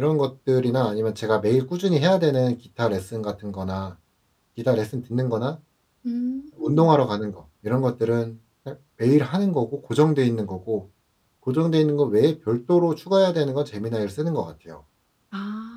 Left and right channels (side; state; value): both; identical; correlation 1.00